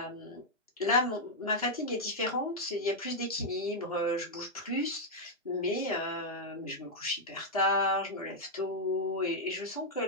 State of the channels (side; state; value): both; normal; correlation -0.03